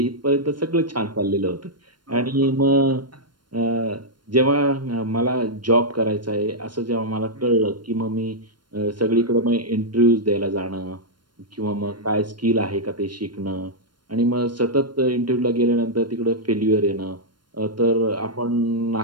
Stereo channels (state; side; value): late; left; 0.72 ms